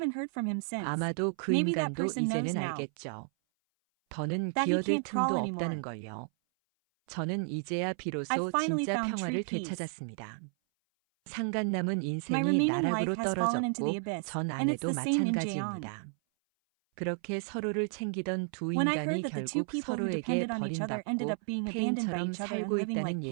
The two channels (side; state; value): left; silent; 56 dB below the other